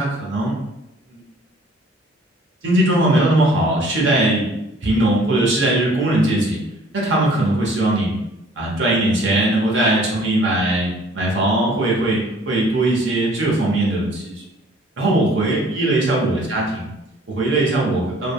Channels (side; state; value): both; normal; correlation 0.55